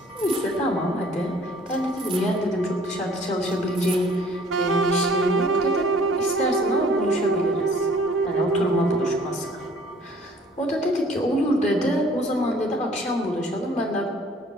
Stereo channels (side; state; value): both; normal; correlation 0.55